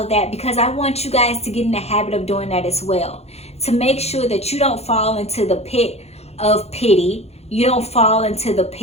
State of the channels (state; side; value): late; right; 0.31 ms